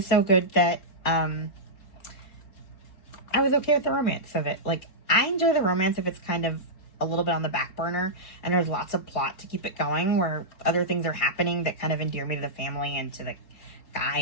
so good that I was okay with the romance of it. Like, I enjoy the romance if it's kind of a little bit on the back burner and there's lots of plot to keep it going, where other things are happening that kind of endear me to the family and to the guy,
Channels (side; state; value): right; late; 4.3 ms